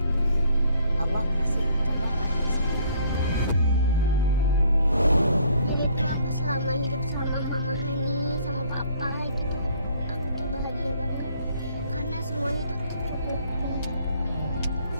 Allah kasih cobaan. Jadi itu aku selama hidup sama mama Hani, sama papa gitu, aku tuh bahagia banget karena semuanya tuh tercukupi,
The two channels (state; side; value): inverted; both; correlation -0.61